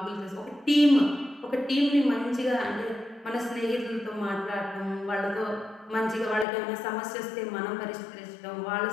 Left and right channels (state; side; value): drops out; right; at 6.5 s